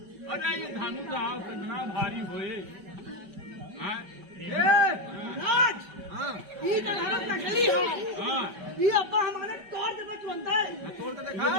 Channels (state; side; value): late; left; 5.2 ms